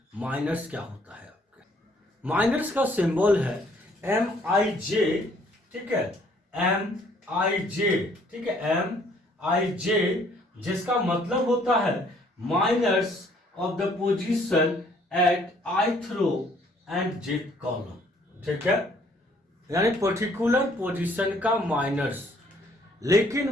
माइनर्स क्या होता है। आपके माइनर्स का सिंबल है MIJ, ठीक है, MIJ, ठीक है, MIJ, जिसका मतलब होता है minors of the position at ith row and jth column, ठीक है, यानी पर्टिकुलर पोजीशन का माइनर्स। लेकिन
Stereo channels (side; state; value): both; normal; correlation 0.62